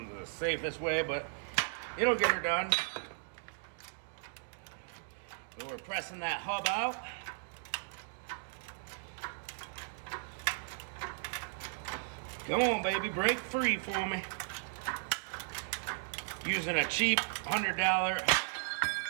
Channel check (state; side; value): silent; left; digital silence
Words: the safest way, but it'll get her done. So we're pressing that hub out. Come on, baby, break free for me. Using a cheap $100